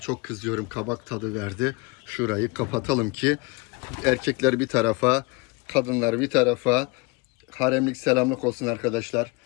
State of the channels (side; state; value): right; quieter; 26.6 dB